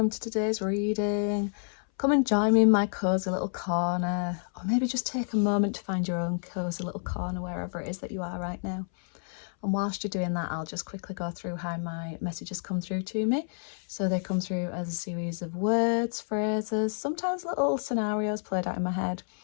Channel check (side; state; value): right; silent; 58 dB below the other